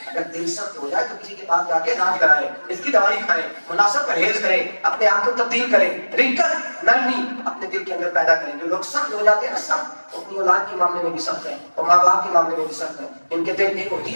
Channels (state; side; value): inverted; both; correlation -1.00